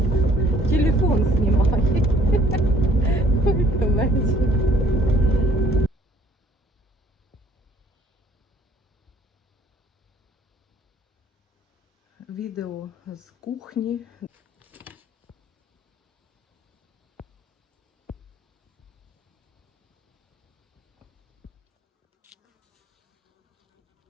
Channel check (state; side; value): normal; both; correlation 0.59